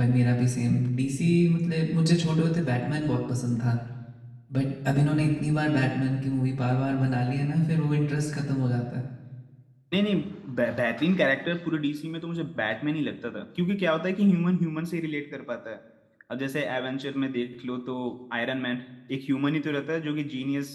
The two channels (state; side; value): identical; both; correlation 1.00